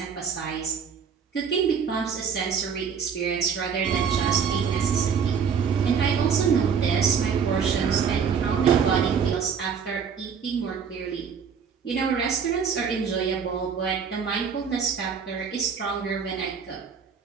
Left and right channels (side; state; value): left; quieter; 6.7 dB